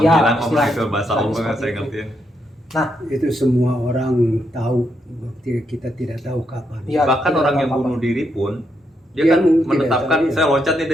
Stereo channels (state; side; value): normal; both; correlation 0.79